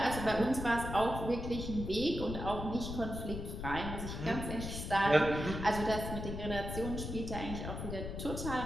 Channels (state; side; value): noise; left; rumble, 6 dB below the sound